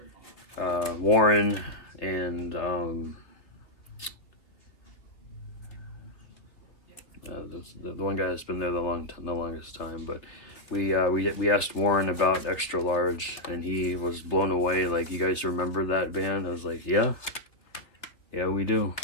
Warren and the one guy that's been there the longest time, but we asked Warren about Extra Large, and he was blown away. Like, you guys remember that band? I was like, yeah, we do.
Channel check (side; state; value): right; late; 2.9 ms